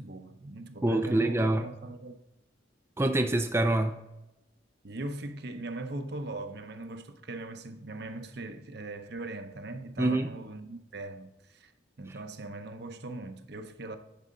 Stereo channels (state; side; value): normal; both; correlation 0.78